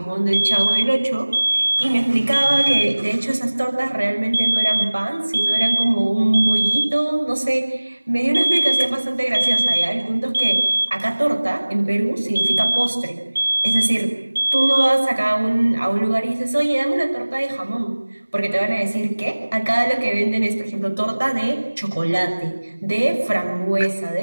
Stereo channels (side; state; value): both; inverted; correlation -1.00